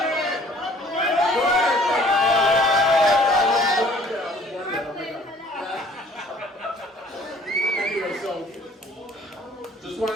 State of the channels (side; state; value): both; normal; correlation 0.55